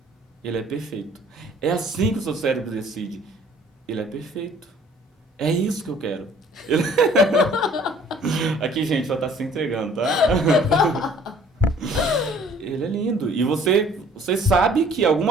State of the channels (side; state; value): both; normal; correlation 0.55